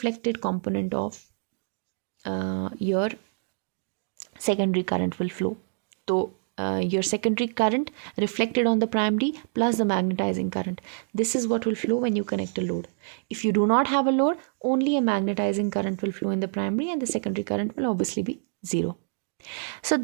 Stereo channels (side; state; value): left; silent; digital silence